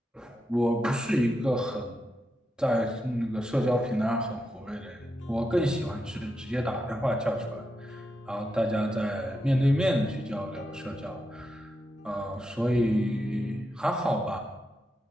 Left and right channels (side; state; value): both; normal; correlation 0.86